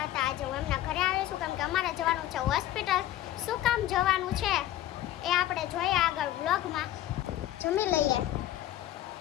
હતા. આજે હું એમના ઘરે આવી છું કેમ કે અમારે જવાનું છે હોસ્પિટલ. શું કામ જવાનું છે એ આપણે જોઈએ આગળ વ્લોગમાં. જમી લઈએ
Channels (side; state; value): right; quieter; 13.5 dB